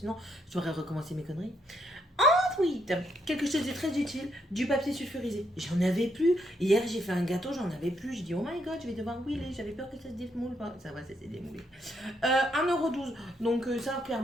je devrais recommencer mes conneries. Ensuite, quelque chose de très utile, du papier sulfurisé. J'en avais plus. Hier, j'ai fait un gâteau, j'en avais plus. Je dis, oh my god, je vais devoir mouler. J'avais peur que ça se démoule pas. Ça va, ça s'est démoulé. 1,12€. Donc, ça,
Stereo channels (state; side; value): normal; both; correlation 0.75